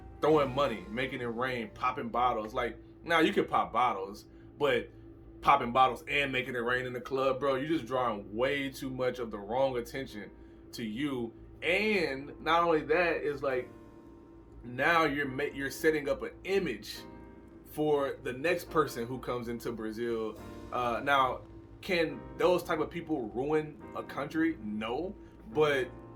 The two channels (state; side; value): identical; both; correlation 1.00